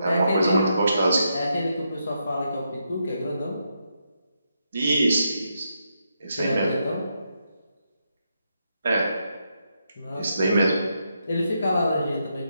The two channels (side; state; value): both; inverted; correlation -0.81